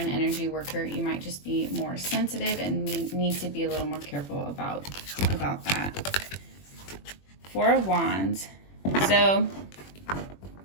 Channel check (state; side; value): late; right; 21 ms